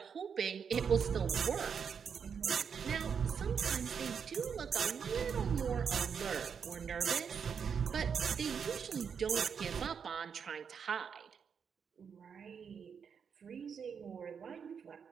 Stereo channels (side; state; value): left; quieter; 6.8 dB